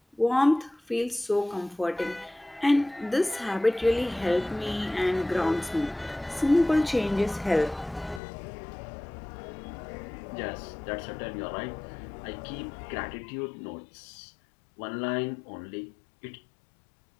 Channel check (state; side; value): drops out; right; at 8.2 s